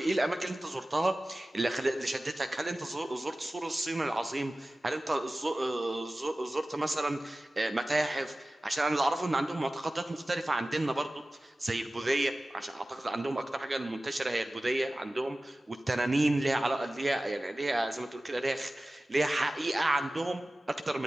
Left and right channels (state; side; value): normal; both; correlation 0.96